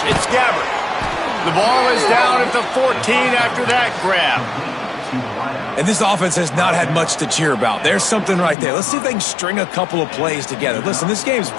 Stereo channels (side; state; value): right; drops out; at 8.6 s